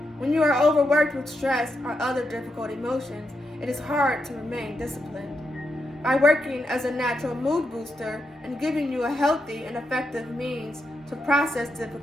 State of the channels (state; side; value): normal; both; correlation 0.84